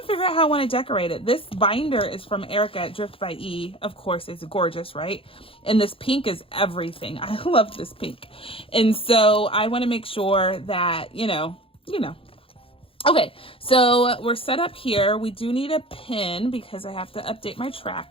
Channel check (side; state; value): right; late; 0.27 ms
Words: figured out how I want to decorate it. This binder is from Erica at Drift by E. Of course, it's gorgeous, right? And this pink is everything. I love this pink. And so I want to make sure that, you know. Okay, so we're set up here. We do need a pin because I have to update my